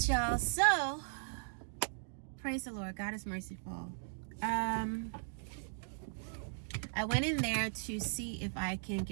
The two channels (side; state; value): left; silent; digital silence